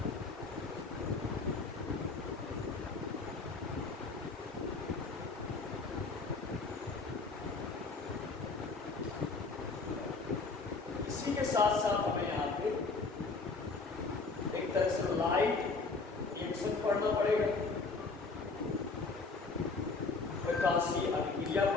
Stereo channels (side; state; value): right; quieter; 4.1 dB